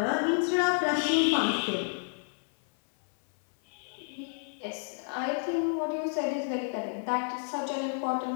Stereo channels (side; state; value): right; silent; 58 dB below the other